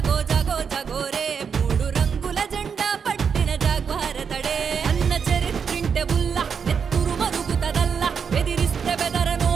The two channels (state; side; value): quieter; left; 6.5 dB